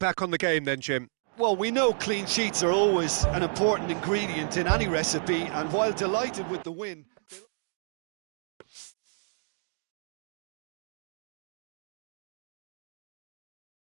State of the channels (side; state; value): left; silent; digital silence